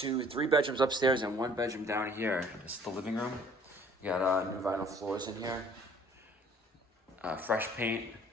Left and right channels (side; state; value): both; normal; correlation 0.56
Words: 3 bedrooms upstairs and 1 bedroom down here. This is the living room. You got new vinyl floors in here. Fresh paint,